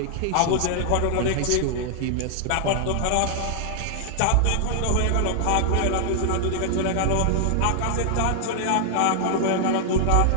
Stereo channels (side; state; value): both; different; correlation 0.00